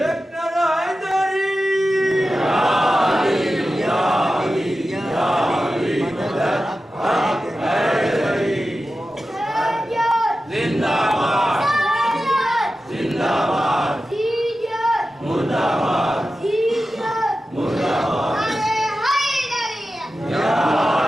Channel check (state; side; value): normal; both; correlation 0.93